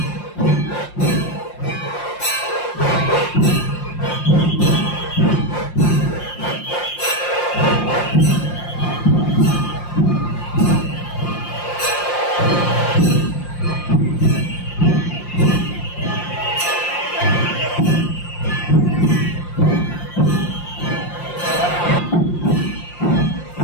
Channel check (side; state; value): right; late; 5.7 ms